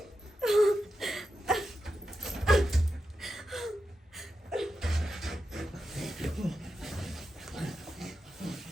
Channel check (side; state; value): both; normal; correlation 0.88